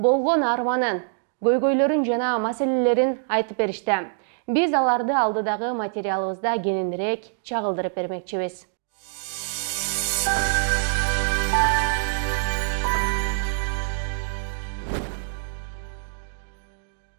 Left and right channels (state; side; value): silent; left; digital silence